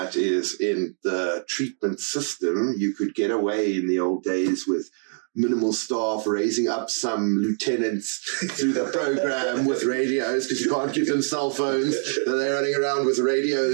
is, in the treatment system, you could get away in the old days with minimal staff, raising up some lieutenants through the program with radios, because you can't give them cell phones. They're running around with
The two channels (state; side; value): silent; left; 60 dB below the other